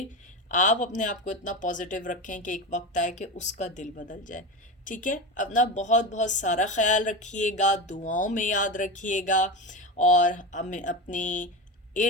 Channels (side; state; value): both; normal; correlation 0.22